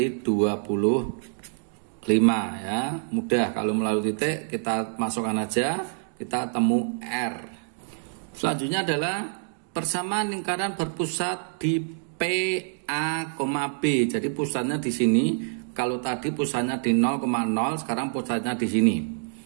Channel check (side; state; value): left; silent; digital silence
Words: 25. Ya, mudah kalau melalui titik kita masukkan aja, kita temu R. Selanjutnya adalah persamaan lingkaran berpusat di PA, B. Jadi pusatnya di sini. Kalau tadi pusatnya di 0,0, sekarang pusatnya di sini.